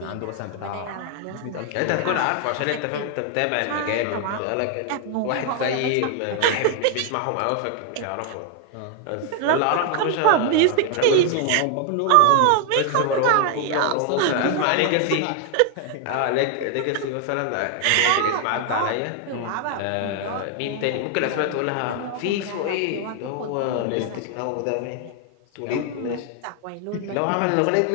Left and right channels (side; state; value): both; different; correlation 0.00